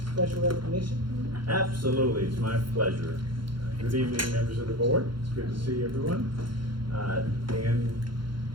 special recognition. Absolutely, it's my pleasure. Good evening, members of the board. It's good to see everyone. And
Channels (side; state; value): left; late; 0.72 ms